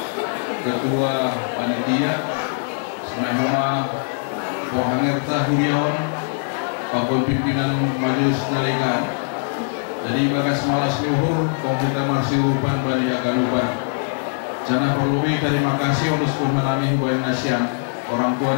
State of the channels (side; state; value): right; silent; 65 dB below the other